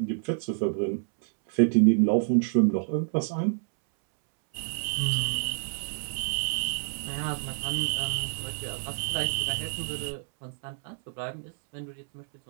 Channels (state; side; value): silent; left; 59 dB below the other